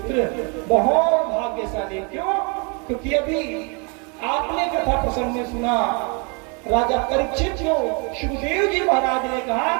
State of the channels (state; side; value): quieter; left; 33.8 dB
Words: बहुत भाग्यशाली। क्यों? क्योंकि अभी आपने कथा प्रसंग में सुना राजा परीक्षित को सुखदेव जी महाराज ने कहा